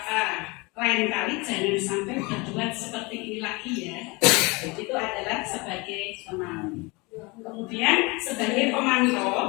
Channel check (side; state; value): right; quieter; 26.3 dB